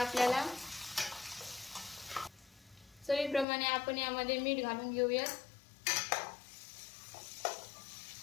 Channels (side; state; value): right; drops out; at 3.5 s